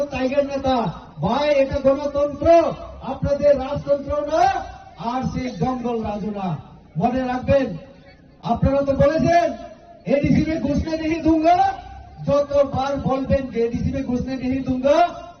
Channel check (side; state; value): both; identical; correlation 1.00